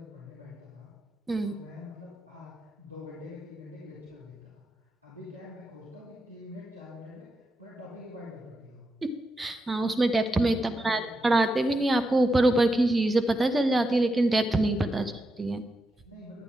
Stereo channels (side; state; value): both; normal; correlation 0.86